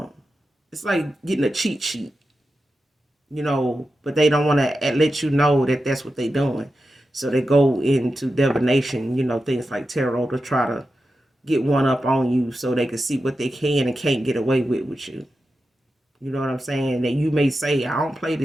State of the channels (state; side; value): normal; both; correlation 0.90